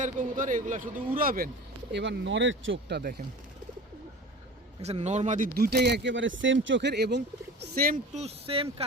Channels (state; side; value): normal; both; correlation 0.37